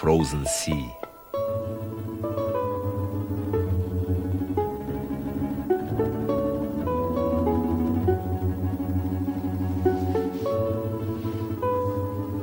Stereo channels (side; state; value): both; identical; correlation 1.00